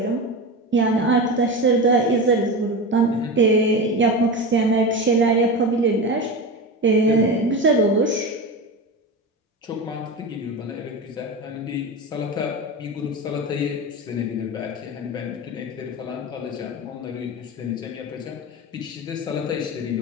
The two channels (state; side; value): normal; both; correlation 0.24